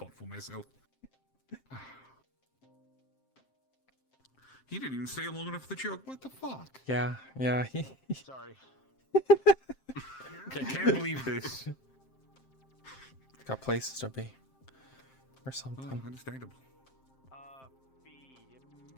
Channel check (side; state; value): right; late; 7.6 ms